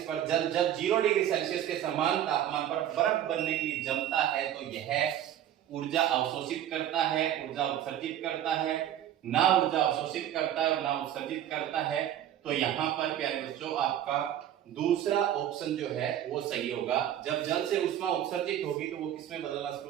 पर जल जब 0 डिग्री सेल्सियस के समान तापमान पर बर्फ बनने के लिए जमता है तो यह ऊर्जा अवशोषित करता है, ऊर्जा उत्सर्जित करता है, ना ऊर्जा अवशोषित करता है और ना उत्सर्जित करता है। तो यहाँ पर प्यारे बच्चों आपका दूसरा ऑप्शन जो है वो सही होगा। जब जल से उष्मा उत्सर्जित होगी तो वो किसमें बदलना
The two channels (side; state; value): left; quieter; 11.1 dB